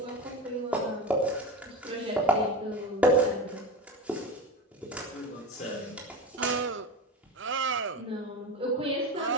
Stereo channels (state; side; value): normal; both; correlation 0.26